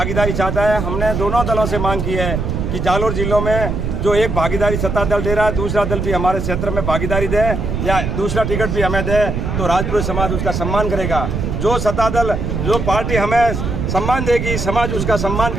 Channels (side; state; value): right; noise; rumble, 2 dB below the sound